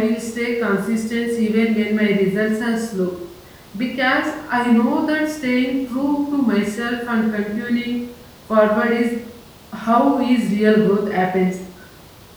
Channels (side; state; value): both; identical; correlation 1.00